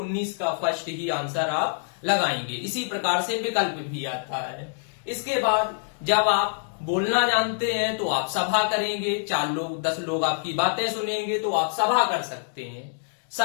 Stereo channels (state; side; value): silent; right; digital silence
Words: का फर्स्ट ही आंसर आप लगाएंगे। इसी प्रकार से विकल्प भी आता है। इसके बाद जब आप बोलना जानते हैं तो आप सभा करेंगे, 4 लोग 10 लोग आपकी बातें सुनेंगे तो आप सभा कर सकते हैं।